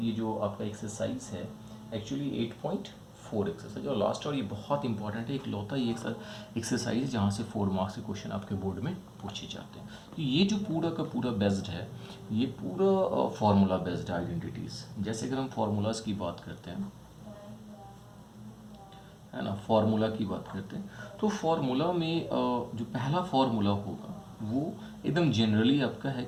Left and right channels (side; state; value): both; identical; correlation 1.00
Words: जो आपका एक्सरसाइज है एक्चुअली 8.4 एक्सरसाइज और लास्ट और ये बहुत इंपॉर्टेंट है। एक लौता ये एक्सरसाइज जहाँ से 4 मार्क्स के क्वेश्चन आपके बोर्ड में पूछे जाते हैं। तो ये जो पूरा का पूरा बेस्ड है, ये पूरा फार्मूला बेस्ड आइडेंटिटीज़। जैसे अगर हम फार्मूलाज की बात करते हैं, है ना, फार्मूला की बात करते हैं तो फार्मूला में जो पहला फार्मूला होगा वो एकदम जनरली आपका है